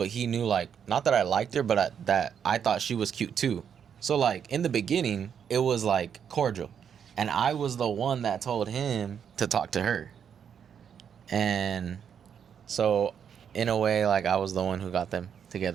he knew, like, not that I liked her, but that I thought she was cute too. So like in the beginning, it was like cordial, and I was the one that told him to talk to her. And so in a way, like I was the one who got them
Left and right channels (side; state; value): left; quieter; 7.9 dB